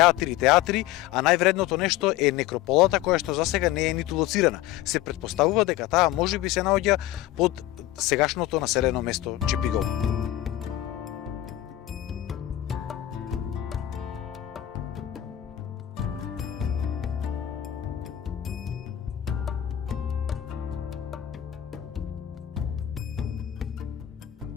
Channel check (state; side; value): quieter; right; 13.7 dB